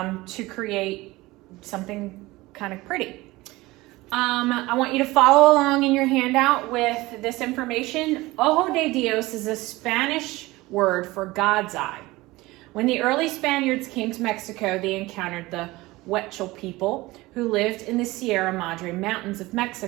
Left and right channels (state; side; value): quieter; left; 20.1 dB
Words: create something kind of pretty. I want you to follow along in your handout with this information. Ojo de Dios is a Spanish word for God's eye. When the early Spaniards came to Mexico, they encountered the Huichol people who lived in the Sierra Madre Mountains of